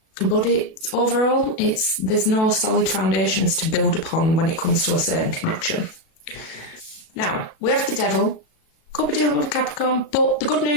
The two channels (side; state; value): right; late; 36 ms